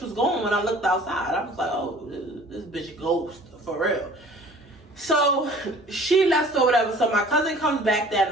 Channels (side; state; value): both; normal; correlation 0.49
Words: was going when I looked outside. I was like, oh, this bitch ghost, for real. So she left or whatever. So my cousin comes back that